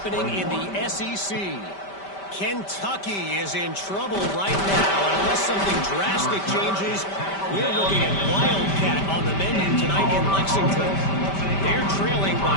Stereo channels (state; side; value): late; right; 5.1 ms